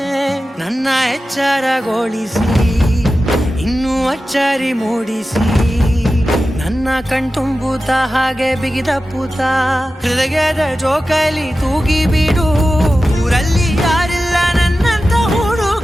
ನನ್ನ ಎಚ್ಚರಗೊಳಿಸಿ ಇನ್ನೂ ಅಚ್ಚರಿ ಮೂಡಿಸಿ, ನನ್ನ ಕಣ್ತುಂಬುತ್ತ ಹಾಗೆ ಬಿಗಿದಪ್ಪುತ್ತ ಹೃದಯದ ಜೋಕಾಲಿ ತೂಗಿ ಬಿಡು. ಊರಲ್ಲಿ ಯಾರಿಲ್ಲ ನನ್ನಂತ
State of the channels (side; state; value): both; normal; correlation 0.94